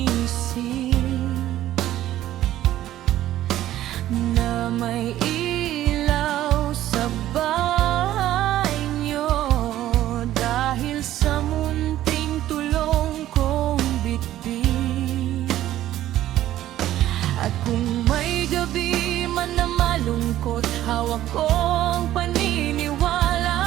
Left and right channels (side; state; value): left; quieter; 13.5 dB